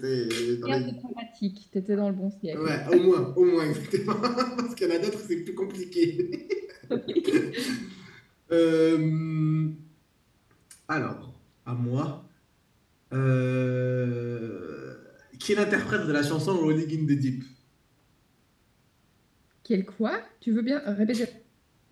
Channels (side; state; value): both; identical; correlation 1.00